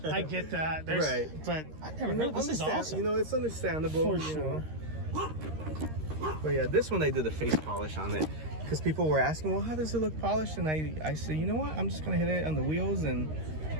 I get that. Right. But I've never heard. This is awesome. It's understandable. For sure. But yeah, this one I did a face polish on it. Because people were asking, well, how does it look polished? And I said, you know what? I'm just going to hit it on the wheels and...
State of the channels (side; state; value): left; late; 13 ms